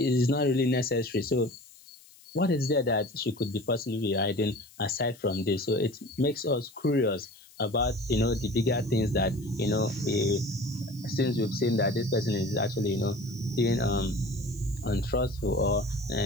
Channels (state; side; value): noise; left; hiss, 24 dB below the sound